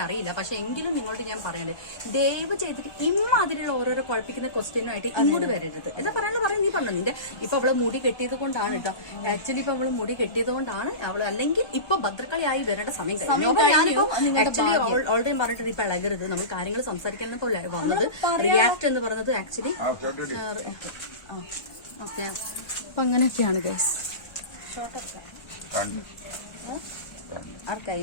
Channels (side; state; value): right; late; 1.3 ms